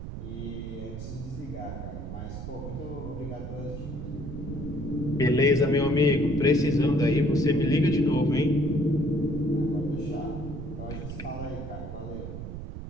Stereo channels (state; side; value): noise; right; rumble, 8 dB below the sound